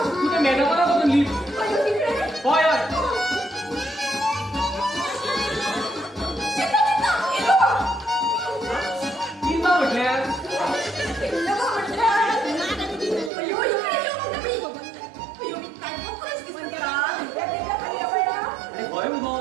ते मॅडमाला बघून लीव होय होय किंवा म्हटल्यार अरे होय मगो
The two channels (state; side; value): drops out; left; at 13.3 s